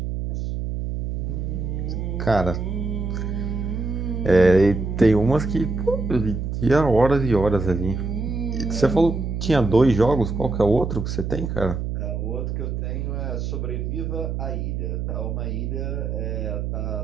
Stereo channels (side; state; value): right; noise; hum, 3 dB below the sound